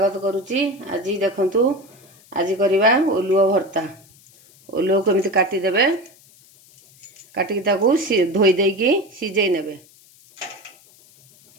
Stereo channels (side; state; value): left; noise; hiss, 27 dB below the sound